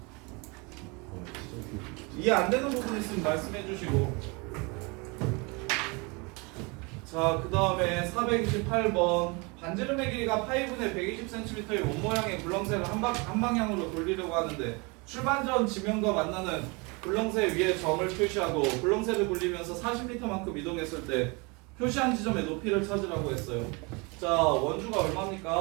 이해 안 되는 부분 있으면 말씀해 주시고. 자, 그 다음에 428번 반지름의 길이가 파이분의 120cm의 원 모양의 굴렁쇠를 한 방향으로 돌리려고 하는데 출발 전 지면과 만나는 굴렁쇠 위에 점을 표시하고 굴렁쇠를 굴리면서 40m만큼 이동했을 때 표시한 지점의 높이를 찾으라고 했어요. 자, 원주가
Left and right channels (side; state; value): left; quieter; 28.9 dB